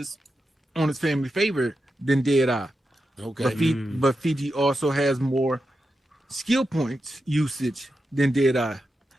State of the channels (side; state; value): both; normal; correlation 0.89